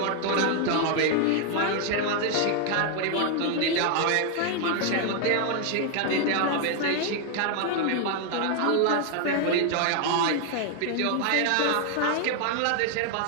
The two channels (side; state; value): both; different; correlation 0.00